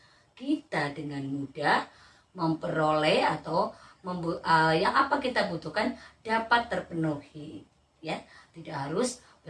kita dengan mudah memperoleh atau yang apa kita butuhkan dapat terpenuhi. Ya, tidak harus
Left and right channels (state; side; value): identical; both; correlation 1.00